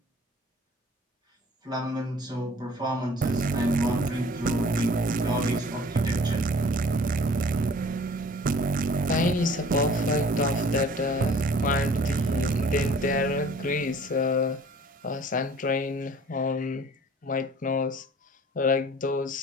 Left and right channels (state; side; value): normal; both; correlation 0.50